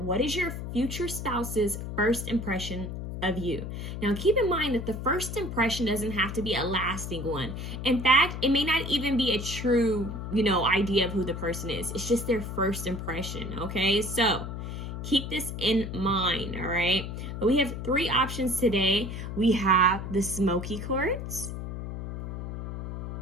what is your future spouse's first impression of you. Now, keep in mind that the first impression doesn't have to be a lasting one. In fact, it may not even be a true, idea of who the person is. It's just their first impression, okay? So, keep this in mind, all right? But we have three options today. We have the smoky quartz.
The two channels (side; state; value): left; noise; hum, 6 dB below the sound